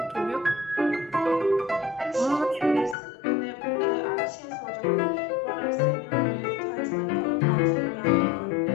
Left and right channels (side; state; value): right; drops out; at 3.0 s